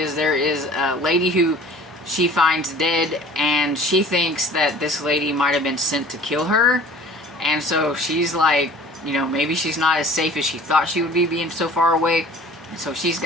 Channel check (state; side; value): normal; both; correlation 0.47